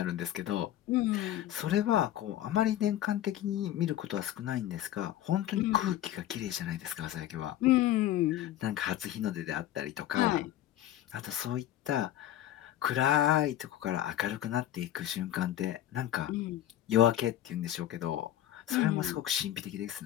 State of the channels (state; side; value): quieter; right; 12.7 dB